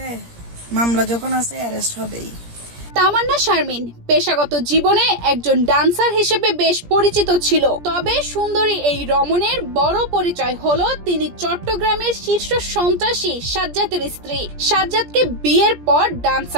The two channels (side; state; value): left; late; 17 ms